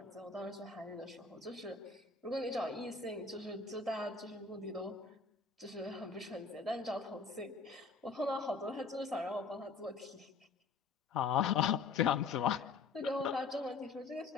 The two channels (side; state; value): right; quieter; 4.7 dB